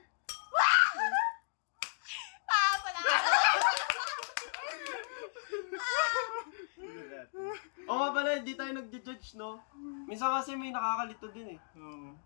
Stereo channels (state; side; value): silent; right; digital silence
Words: Pala! Oo nga pala, hindi tayo nag-judge, no? Minsan kasi may nakakalito din eh. Oo.